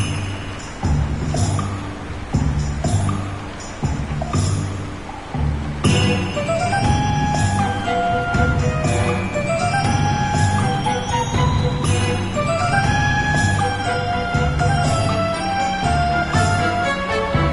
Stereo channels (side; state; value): both; identical; correlation 1.00